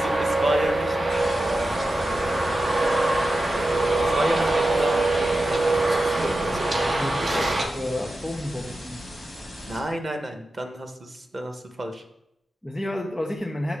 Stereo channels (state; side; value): normal; both; correlation 0.92